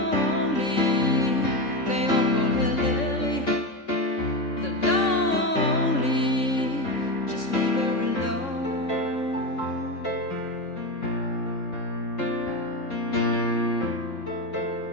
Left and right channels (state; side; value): late; right; 3.6 ms